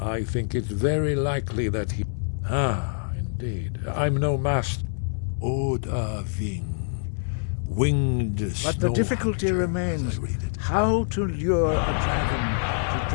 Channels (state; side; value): silent; right; 60 dB below the other